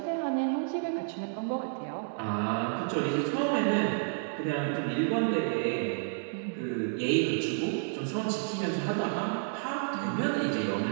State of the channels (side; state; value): left; silent; digital silence